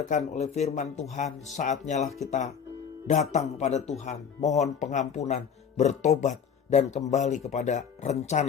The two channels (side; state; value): right; quieter; 7.2 dB